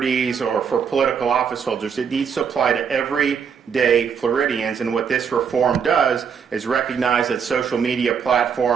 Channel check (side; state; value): left; quieter; 6.8 dB